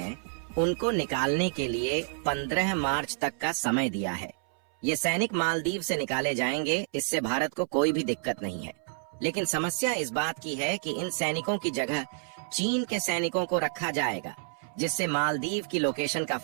उनको निकालने के लिए 15 मार्च तक का समय दिया है। ये सैनिक मालदीव से निकाले जाएंगे, इससे भारत को कोई भी दिक्कत नहीं है। लेकिन समस्या इस बात की है कि इन सैनिकों की जगह चीन के सैनिकों को रखा जाएगा, जिससे मालदीव की लोकेशन का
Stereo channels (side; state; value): left; silent; 58 dB below the other